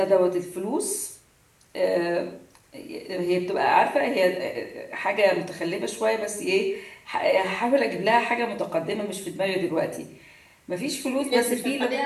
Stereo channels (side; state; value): both; identical; correlation 1.00